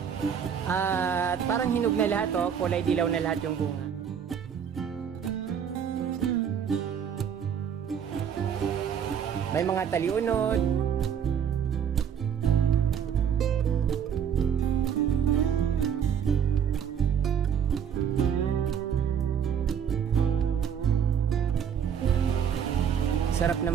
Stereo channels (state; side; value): quieter; left; 8.1 dB